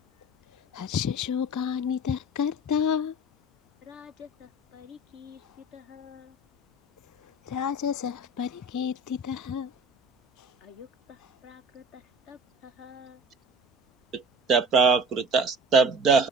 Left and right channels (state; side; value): normal; both; correlation 0.39